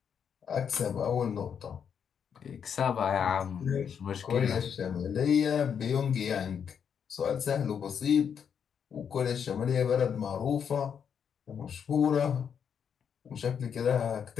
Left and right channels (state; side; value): quieter; right; 7.5 dB